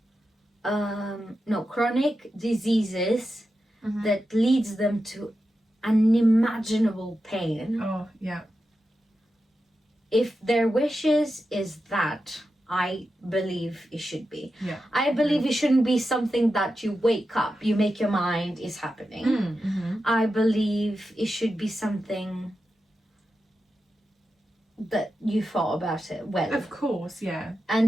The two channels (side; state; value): both; normal; correlation 0.90